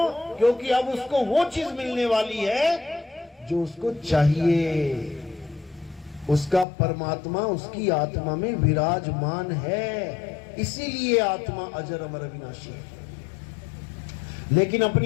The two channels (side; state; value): right; drops out; at 6.7 s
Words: क्योंकि अब उसको वो चीज मिलने वाली है जो उसको चाहिए। उसका परमात्मा उसकी आत्मा में विराजमान है, इसीलिए आत्मा अजर अमर अविनाशी है। लेकिन